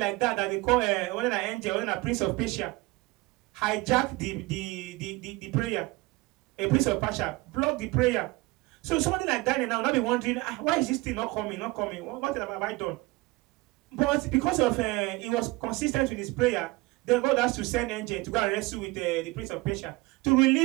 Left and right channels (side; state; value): left; quieter; 22.2 dB